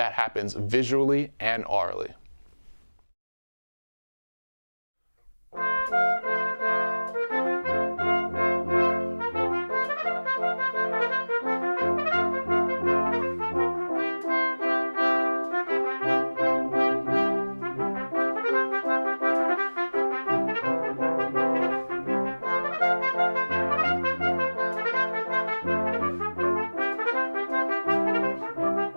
happens visually and aurally.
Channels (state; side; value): inverted; both; correlation -1.00